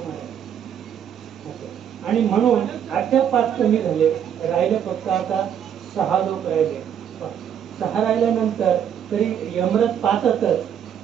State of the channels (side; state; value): left; quieter; 8.9 dB